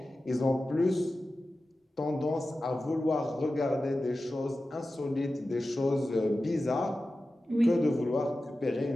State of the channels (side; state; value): both; normal; correlation 0.94